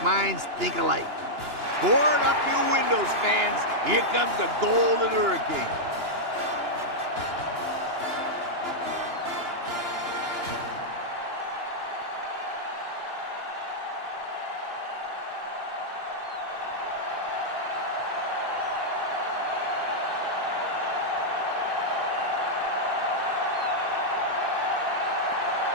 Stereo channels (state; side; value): late; left; 2.9 ms